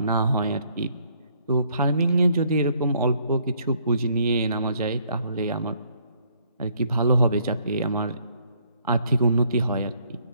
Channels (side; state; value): both; inverted; correlation -0.66